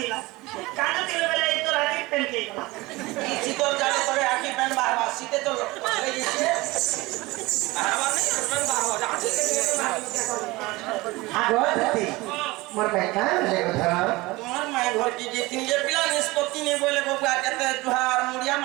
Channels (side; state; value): left; quieter; 21.4 dB